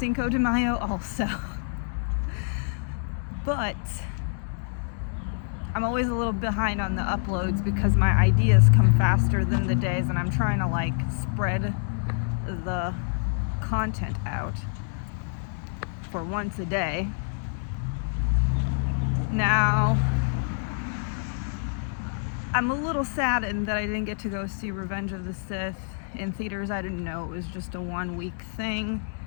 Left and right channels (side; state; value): right; silent; digital silence